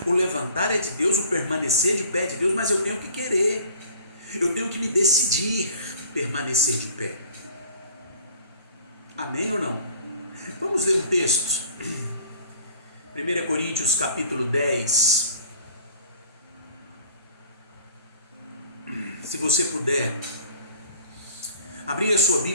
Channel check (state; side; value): inverted; both; correlation -0.49